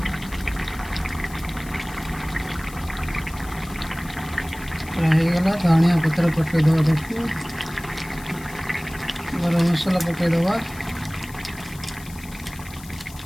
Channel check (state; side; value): noise; left; hiss, 18 dB below the sound